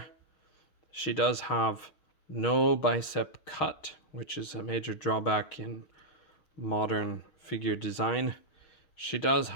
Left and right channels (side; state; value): right; late; 6.4 ms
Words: She does have no bicep cut, which is a major drawback in modern figure design. She does